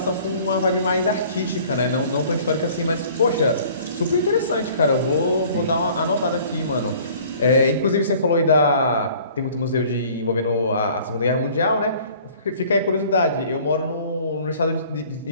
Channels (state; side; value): inverted; both; correlation -0.52